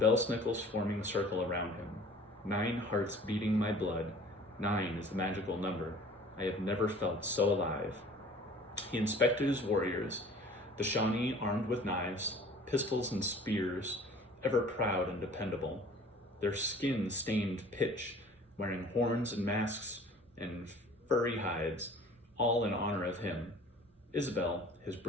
snickles forming a circle around him. 9 hearts beating my blood. 9 is the magical number. I have never felt so alive. He inspected his warriors, the Shawnee armed with knives, pistols and spears, ever proud and dependable. Their skin stained pitch, wearing horns and masks and furry hides, all in honor of him. Isabel, his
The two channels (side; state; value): both; normal; correlation 0.48